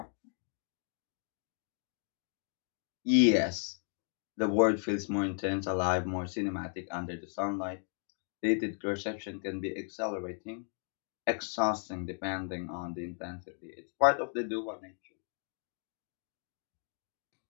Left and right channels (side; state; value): right; silent; 54 dB below the other